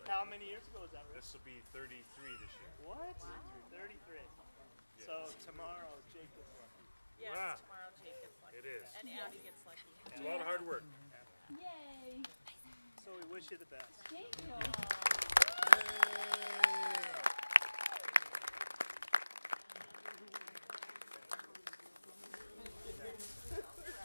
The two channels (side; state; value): both; inverted; correlation -1.00